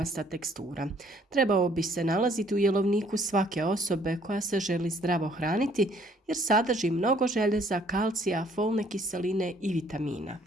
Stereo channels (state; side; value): normal; both; correlation 0.62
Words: tekstura. Trebao bi se nalaziti u jelovniku svake osobe koja se želi zdravo hraniti jer sadrži mnogo željeza, kalcija, folne kiseline i vitamina.